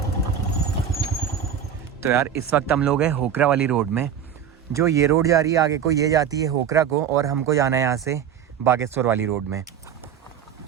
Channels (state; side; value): quieter; left; 8.4 dB